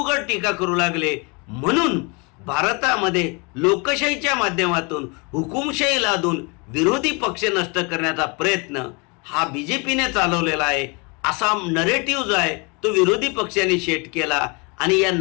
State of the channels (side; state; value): right; quieter; 30.4 dB